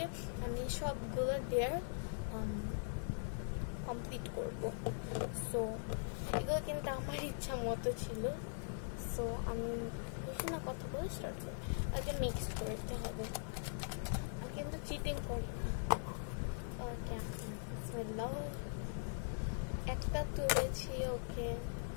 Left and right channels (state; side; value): silent; right; 50 dB below the other